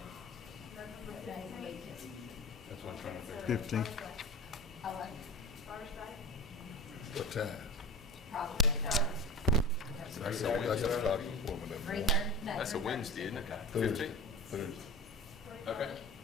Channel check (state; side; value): normal; both; correlation 0.32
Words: That's what I'm trying to figure. 15th. What time? That's I got to start before Three that. thirty? That's a Wednesday, isn't it? Thursday. 15th? Thursday. Okay,